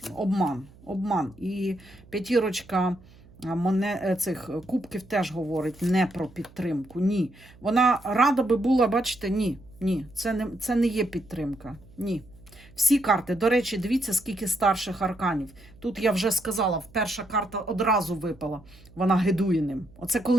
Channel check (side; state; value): right; noise; hum, 24 dB below the sound